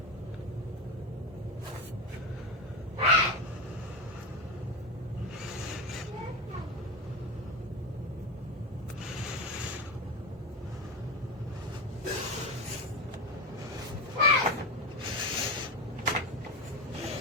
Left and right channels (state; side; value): normal; both; correlation 0.17